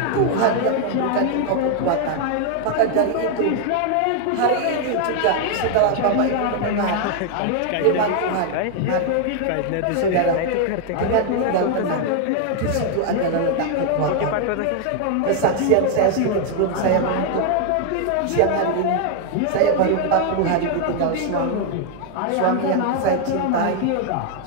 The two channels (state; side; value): different; both; correlation 0.00